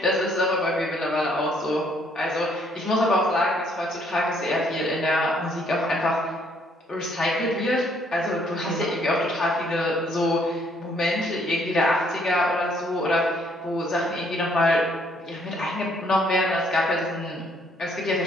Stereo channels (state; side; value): normal; both; correlation 0.66